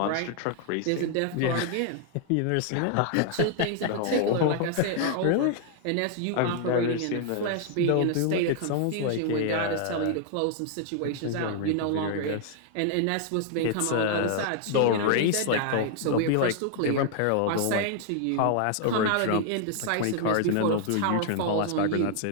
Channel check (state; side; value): different; both; correlation 0.00